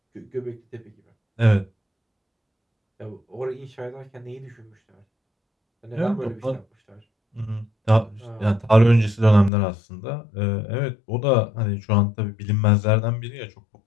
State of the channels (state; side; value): drops out; right; at 9.5 s